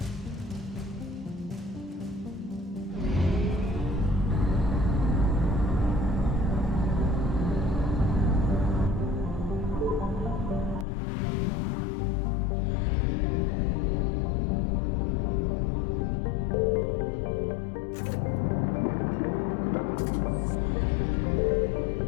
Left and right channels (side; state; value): right; drops out; at 10.9 s